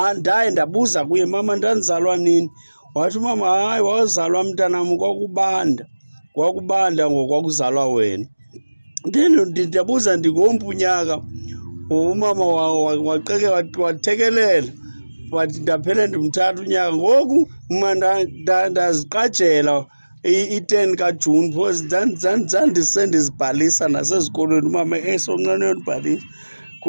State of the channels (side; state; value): both; inverted; correlation -1.00